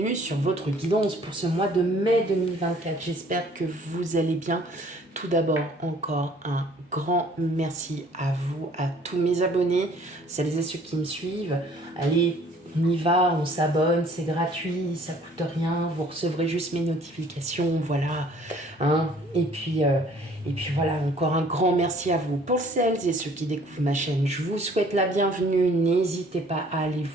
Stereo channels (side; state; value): both; normal; correlation 0.56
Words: sur votre guidance pour ce mois de mai 2024. J'espère que vous allez bien. Tout d'abord, encore un grand merci à vous, à tous mes abonnés, celles et ceux qui me suivent. Allez, on y va, on s'abonne, c'est gratuit, ça coûte rien, vous recevrez juste mes notifications, voilà. Hein. Et puis voilà, encore un grand merci à vous. Pour celles et ceux qui découvrent ma chaîne, je vous souhaite la bienvenue. N'hésitez pas à aller